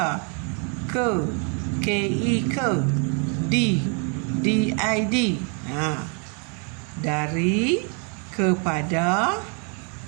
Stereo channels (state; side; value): quieter; left; 35.3 dB